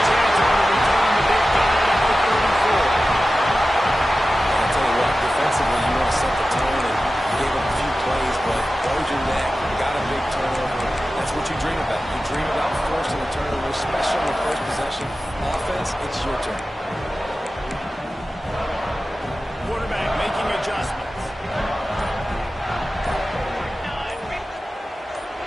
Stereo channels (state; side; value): normal; both; correlation 0.94